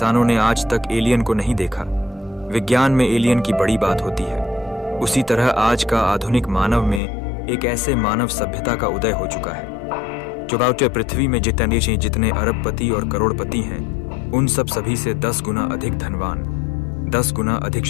ने आज तक एलियन को नहीं देखा, विज्ञान में एलियन की बड़ी बात होती है, उसी तरह आज का आधुनिक मानव में एक ऐसे मानव सभ्यता का उदय हो चुका है जो बाउटे पृथ्वी में जितने अरबपति और करोड़पति हैं, उन सभी से 10 गुना अधिक धनवान, 10 गुना अधिक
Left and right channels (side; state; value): right; drops out; at 7.0 s